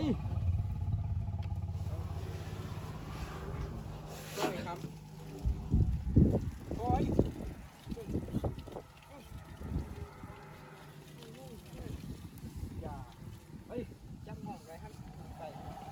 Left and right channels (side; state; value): both; identical; correlation 1.00